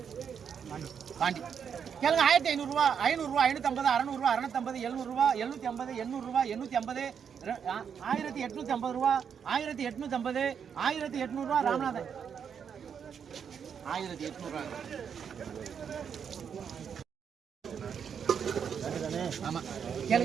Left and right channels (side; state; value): left; quieter; 7.4 dB